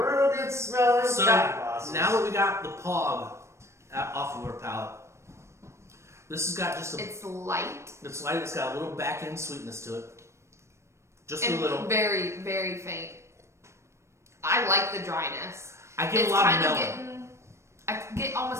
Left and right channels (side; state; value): left; late; 0.13 ms